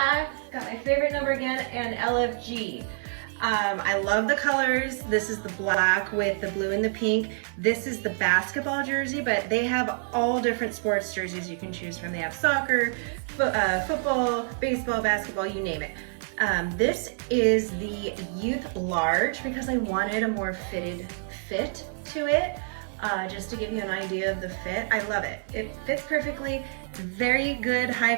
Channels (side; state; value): left; silent; digital silence